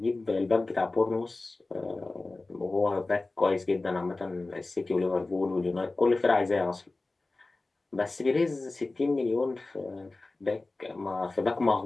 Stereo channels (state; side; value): quieter; right; 3.2 dB